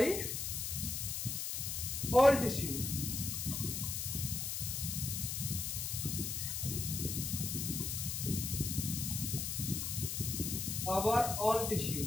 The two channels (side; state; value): left; noise; hiss, 2 dB below the sound